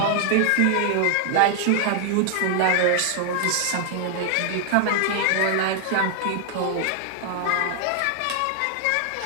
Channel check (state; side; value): different; both; correlation 0.00